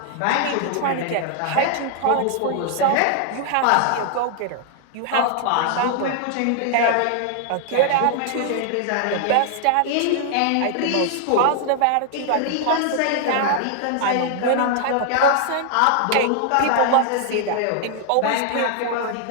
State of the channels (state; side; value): different; both; correlation 0.00